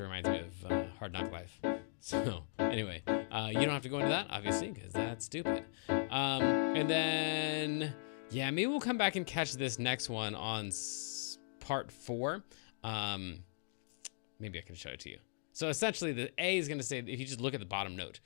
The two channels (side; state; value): right; silent; digital silence